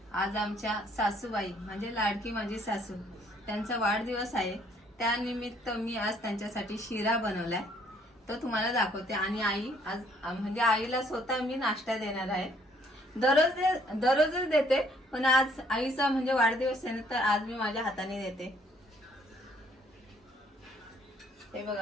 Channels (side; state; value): both; normal; correlation 0.64